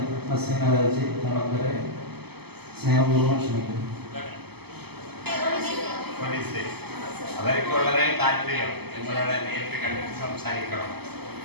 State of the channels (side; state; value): left; late; 0.97 ms